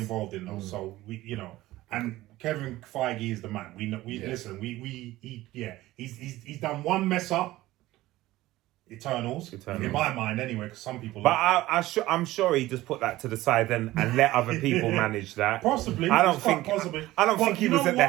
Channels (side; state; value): left; quieter; 17.0 dB